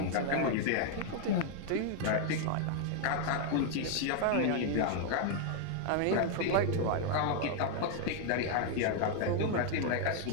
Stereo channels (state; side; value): different; both; correlation 0.00